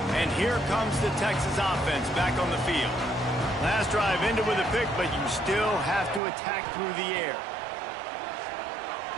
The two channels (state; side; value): drops out; left; at 6.2 s